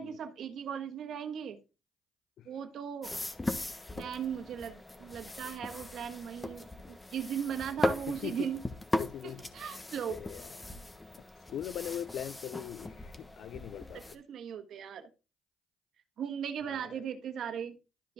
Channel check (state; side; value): normal; both; correlation 0.76